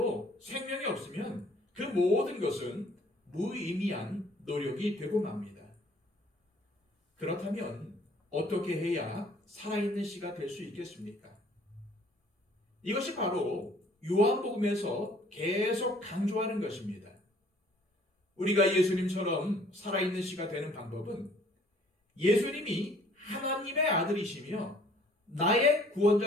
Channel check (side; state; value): both; normal; correlation 0.57